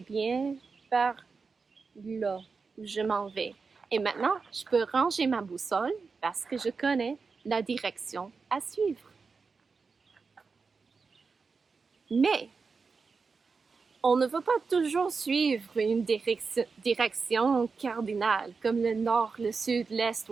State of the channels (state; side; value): quieter; left; 4.8 dB